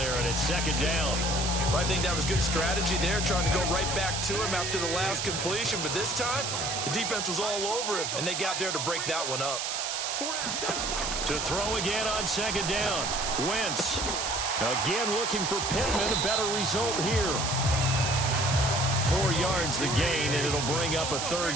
and it's 2nd down. Well, I think that was good strategy there, trying to go right back to him after the last completion. But this time, the defense was all over him, and they got there to break that one up. To throw again on 2nd down. Wentz. Again looking for Pittman. A better result here. 4 yards the gain, and it'll bring up a third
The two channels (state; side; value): noise; right; hiss, 2 dB below the sound